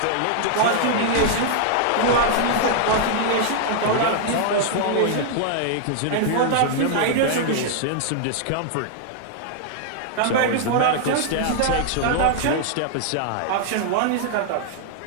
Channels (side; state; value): both; different; correlation -0.01